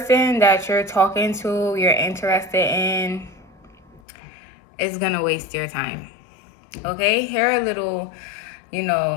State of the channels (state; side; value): drops out; right; at 4.0 s